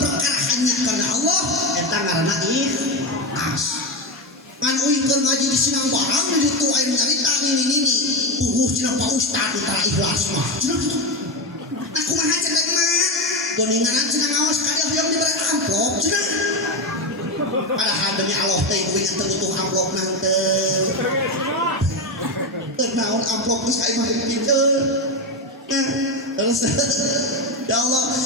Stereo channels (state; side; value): normal; both; correlation 0.14